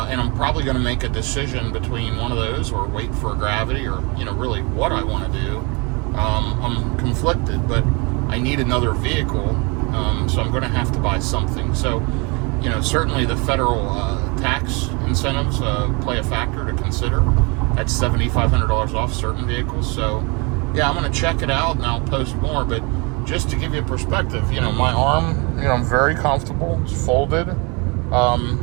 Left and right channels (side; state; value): left; quieter; 30.0 dB